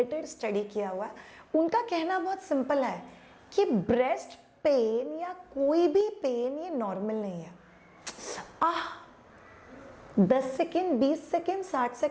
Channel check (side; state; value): both; identical; correlation 1.00